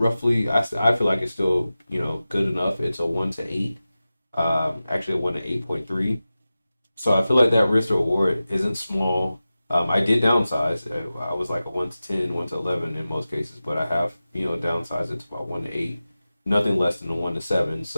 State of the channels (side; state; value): both; inverted; correlation -0.95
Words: I feel like it's still good enough. It's a 1 to 8. Actually a 1 to 8.3. So I feel like that risk reward isn't small. I did downsize. I was like a 1 to 10, 1 to 11 in most cases, but I have downsized it to about 1 to 8, nothing less than a 1 to 7.